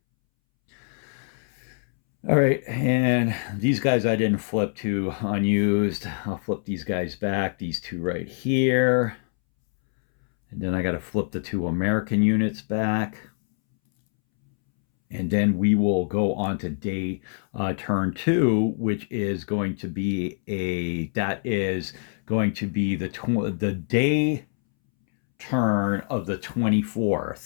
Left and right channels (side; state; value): right; silent; 62 dB below the other